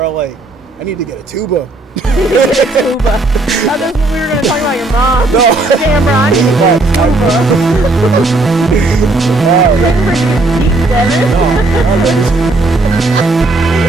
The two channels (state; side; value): quieter; left; 3.1 dB